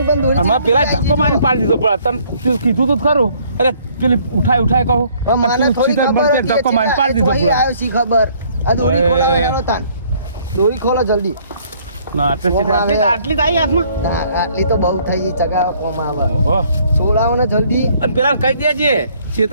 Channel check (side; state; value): both; inverted; correlation -0.62